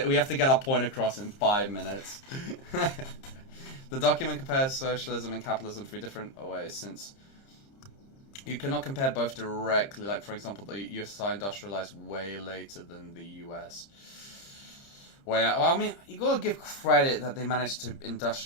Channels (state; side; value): late; right; 30 ms